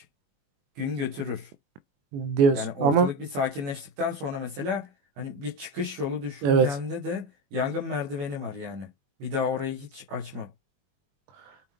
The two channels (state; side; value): late; left; 21 ms